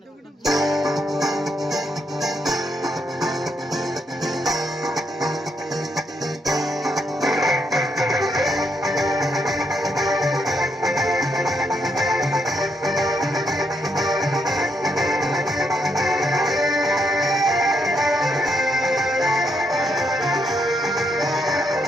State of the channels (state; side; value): normal; both; correlation 0.77